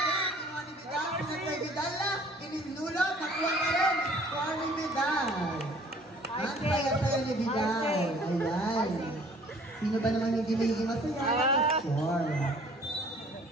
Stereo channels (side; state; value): both; normal; correlation 0.54